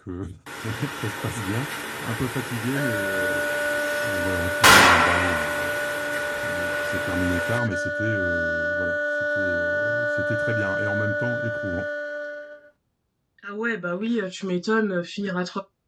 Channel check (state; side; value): identical; both; correlation 1.00